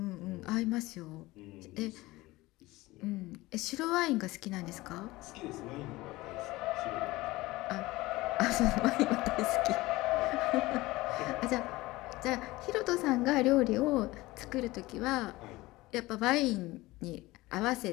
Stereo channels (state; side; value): quieter; right; 19.7 dB